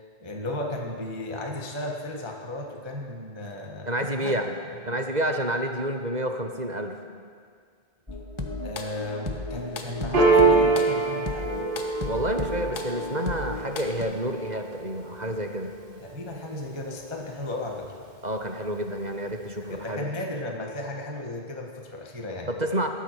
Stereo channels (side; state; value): left; late; 2.0 ms